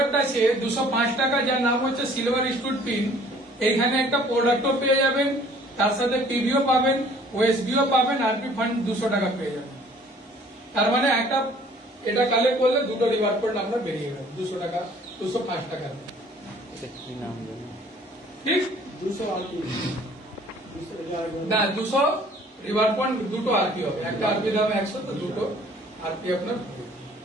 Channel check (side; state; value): both; normal; correlation 0.55